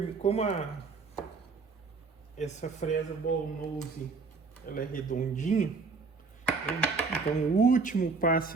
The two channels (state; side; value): quieter; left; 4.4 dB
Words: como essa fresa ball nose, ela é redondinha, então o último